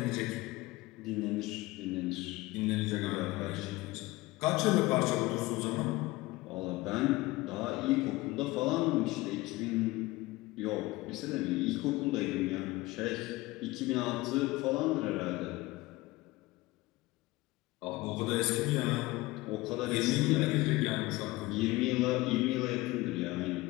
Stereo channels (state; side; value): quieter; right; 20.2 dB